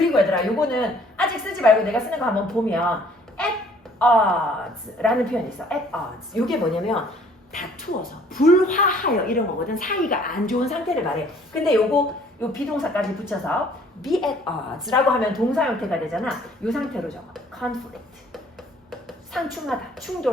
얘들아, 요거는 아직 쓰지 말고 내가 쓰는 거 한번 보면 at odds라는 표현이 있어. at odds. 요게 뭐냐면 다투어서, 불화하여 이런 거거든. 사이가 안 좋은 상태를 말해. 근데 요 비동사까지 붙여서 be at odds라고 하면 동사 형태가 되잖아. 요 상태로 적어. conflict. 상충하다,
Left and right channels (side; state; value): both; normal; correlation 0.57